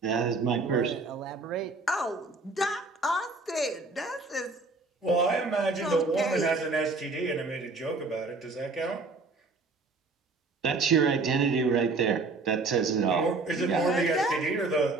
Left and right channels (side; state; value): left; quieter; 3.6 dB